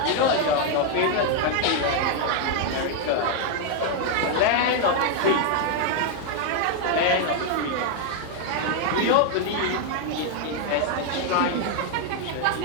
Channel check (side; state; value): both; different; correlation 0.00